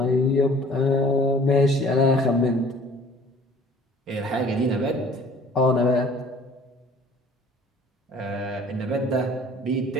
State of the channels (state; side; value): normal; both; correlation 0.51